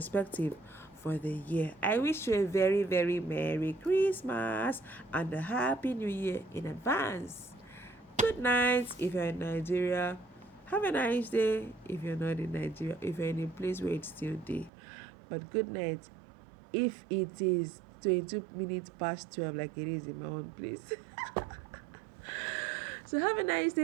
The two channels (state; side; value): drops out; left; at 14.7 s